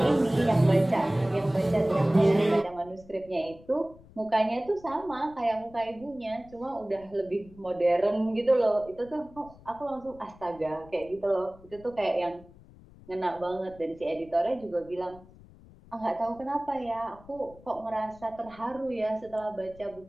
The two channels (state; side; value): noise; left; rumble, 23 dB below the sound